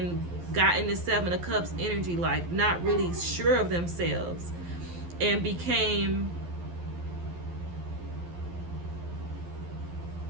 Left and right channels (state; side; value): late; left; 12 ms